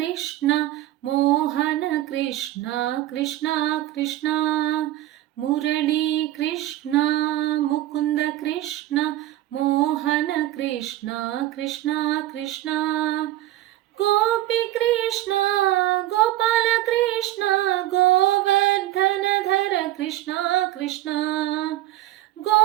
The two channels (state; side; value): quieter; left; 14.8 dB